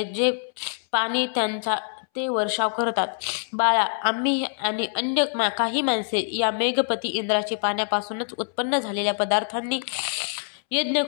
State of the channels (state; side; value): silent; right; 62 dB below the other